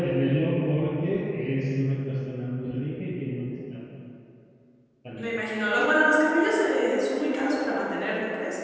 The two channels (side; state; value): both; identical; correlation 1.00